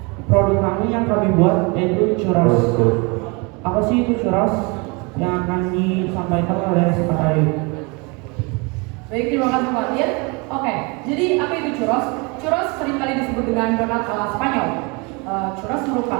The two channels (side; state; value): left; quieter; 29.5 dB